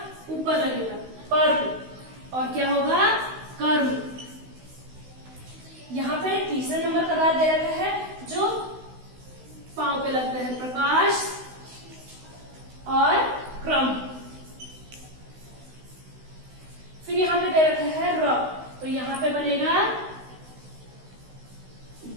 ऊपर लगेगा, पर्व। और क्या होगा, कर्म। यहाँ पे तीसरे नंबर का रा दे रखा है, जो पांव पे लगता है, प्रकाश और क्रम। फिर यहाँ पे दे रखा है र, तो यहाँ पे बनेगा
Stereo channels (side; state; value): left; late; 16 ms